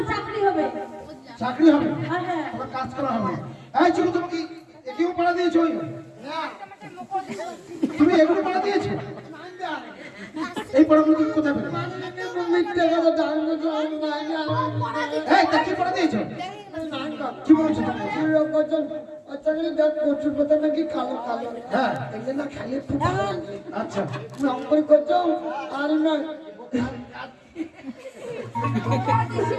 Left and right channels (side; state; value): both; identical; correlation 1.00